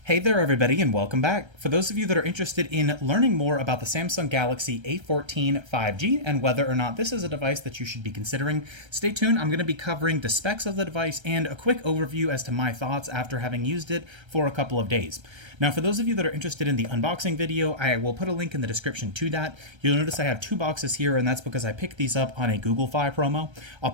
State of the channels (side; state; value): left; late; 1.3 ms